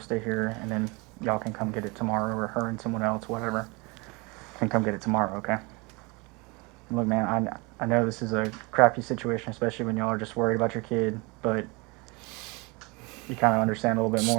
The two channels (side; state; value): left; quieter; 27.4 dB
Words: here, and then y'all can come get it tomorrow, or her and someone else, whatever, can come get it tomorrow. Okay. Look, man, I know this is a crappy situation, especially when y'all are just worried about your kid, but you kind of understand a little bit